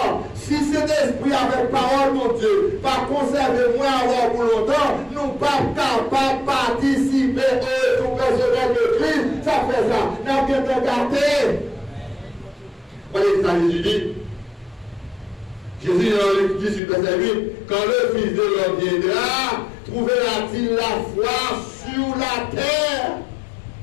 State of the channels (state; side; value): drops out; right; at 16.8 s